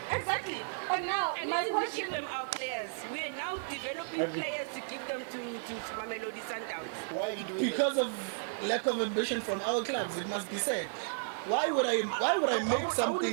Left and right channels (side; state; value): left; silent; digital silence